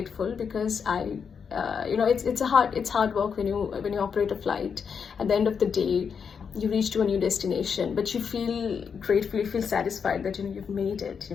because you know, it's hard work when you operate a flight. At the end of the day, you reach to a new destination, but you feel grateful, you feel satisfied that, you know, you've made it.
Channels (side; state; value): right; quieter; 6.5 dB